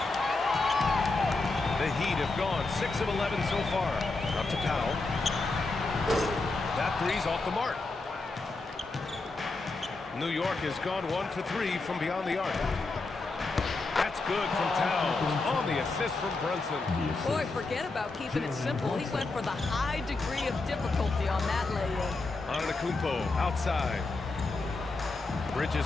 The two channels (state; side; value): quieter; right; 3.5 dB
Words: The Heat have gone 6 of 11 so far. Up to Powell. That 3's off the mark. New York has gone 1 for 3 from beyond the arc. That's good from Towns. On the assist from Brunson. Boy, forget about keeping it simple. He went for the high degree of difficulty on that lay-in. Antetokounmpo outside.